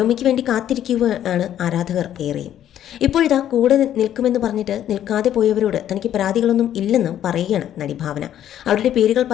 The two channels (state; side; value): quieter; right; 11.0 dB